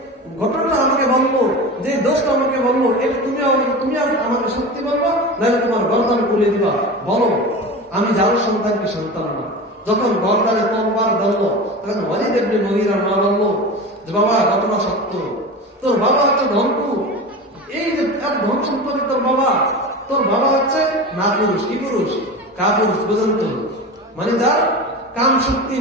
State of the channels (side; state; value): both; normal; correlation 0.29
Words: ঘটনাটা আমাকে বলবো, যে দোষটা আমাকে বলবো, এটা তুমি আমাকে সত্যি বলবো, নাহলে তোমার গর্দান খুলে দিবা, বলো আমি যার সন্তান কি সন্তান না। যখন গর্দানে তরবার ধরলো, তখন ওয়ালিদ ইবনে মুগীরার মা বললো যে বাবা ঘটনা সত্য, তোর বাবা হচ্ছে ধনকু, এই যে ধন সম্পত্তি তোর বাবা হচ্ছে না পুরুষ, কি পুরুষ, কাপুরুষ, বুঝলেন তো, মানে যার কাম শক্তি